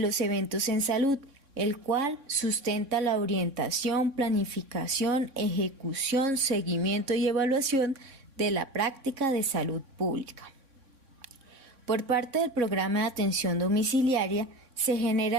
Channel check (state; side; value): late; left; 3.6 ms